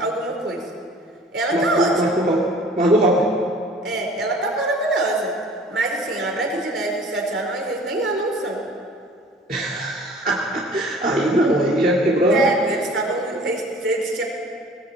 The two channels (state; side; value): normal; both; correlation 0.48